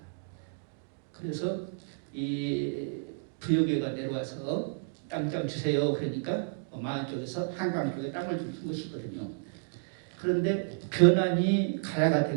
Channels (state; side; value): silent; left; digital silence